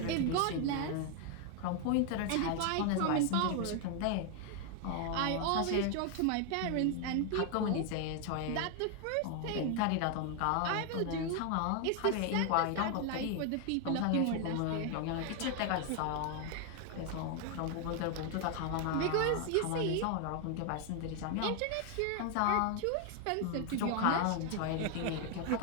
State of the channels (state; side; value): different; both; correlation 0.01